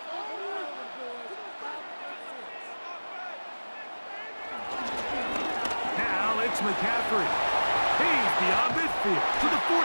Now it's McCaffrey. He's beyond midfield to the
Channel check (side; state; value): both; inverted; correlation -1.00